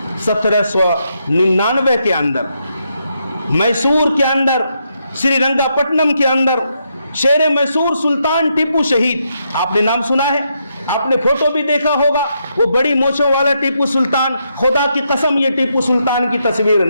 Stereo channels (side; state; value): both; inverted; correlation -0.80